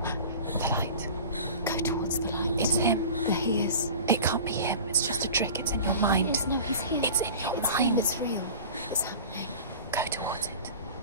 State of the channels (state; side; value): inverted; both; correlation -0.38